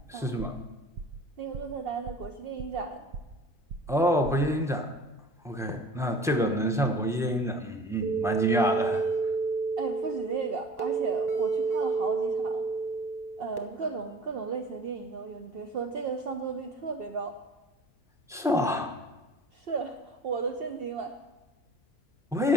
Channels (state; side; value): normal; both; correlation 0.44